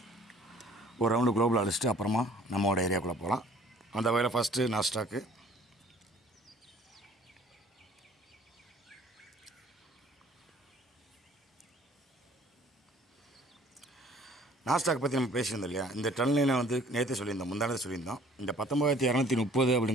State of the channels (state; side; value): normal; both; correlation 0.53